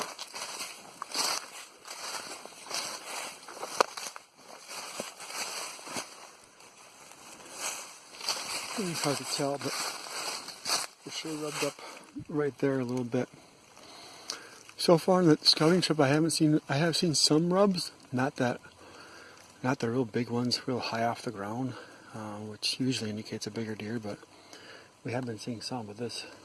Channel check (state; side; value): identical; both; correlation 1.00